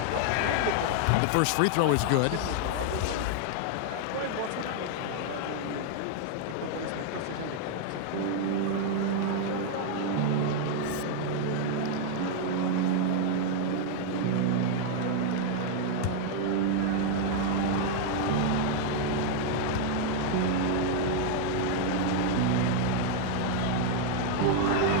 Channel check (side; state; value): both; different; correlation 0.00